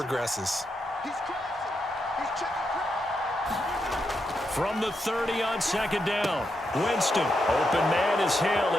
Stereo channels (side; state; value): both; normal; correlation 0.84